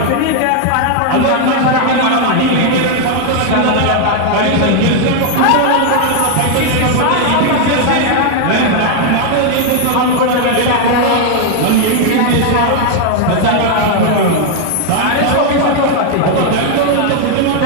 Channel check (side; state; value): both; different; correlation 0.00